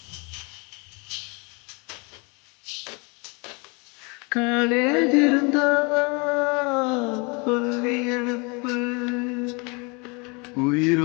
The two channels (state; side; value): quieter; right; 30.4 dB